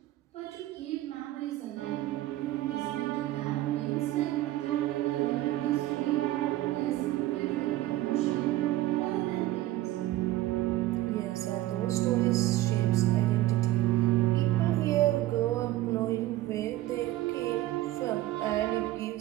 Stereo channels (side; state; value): left; quieter; 15.7 dB